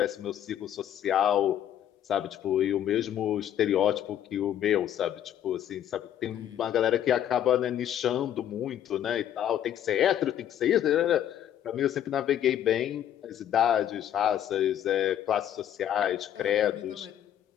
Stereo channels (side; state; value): right; quieter; 10.7 dB